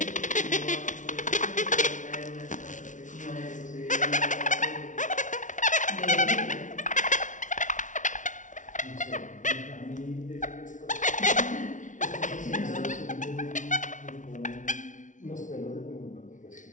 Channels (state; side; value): late; right; 0.37 ms